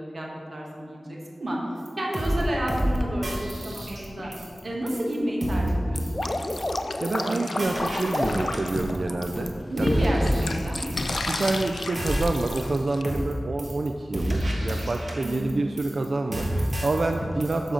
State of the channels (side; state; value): both; normal; correlation 0.96